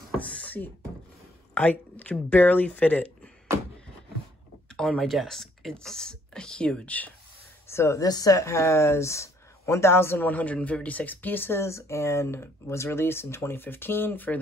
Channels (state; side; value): normal; both; correlation 0.65